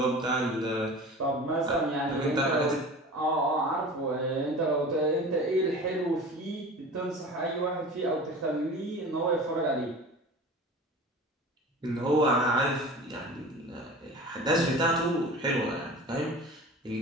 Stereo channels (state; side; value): normal; both; correlation 0.37